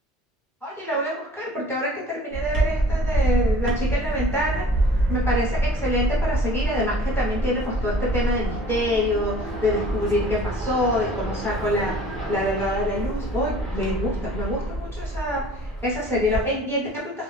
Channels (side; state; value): both; normal; correlation 0.50